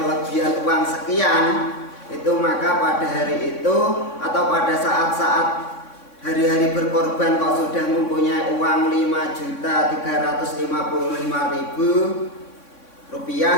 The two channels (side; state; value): right; late; 3.6 ms